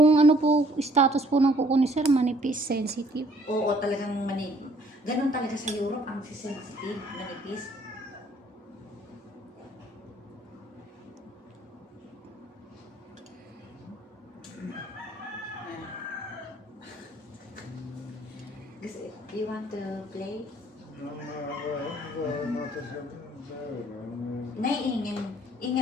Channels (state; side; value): normal; both; correlation 0.60